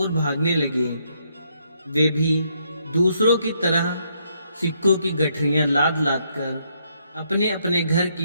भागने लगे। वे भी दूसरों की तरह सिक्कों की गठरियां लाद लाद कर अपने अपने घर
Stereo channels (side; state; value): both; inverted; correlation -0.74